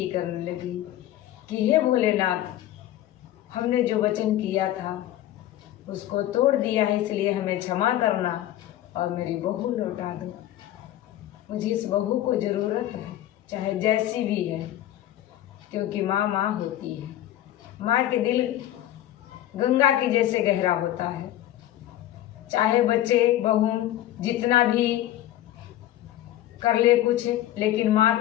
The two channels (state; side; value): quieter; right; 13.4 dB